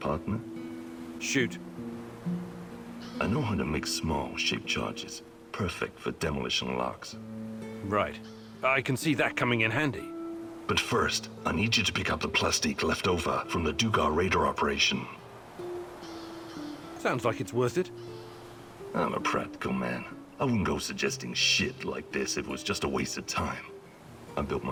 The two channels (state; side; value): identical; both; correlation 1.00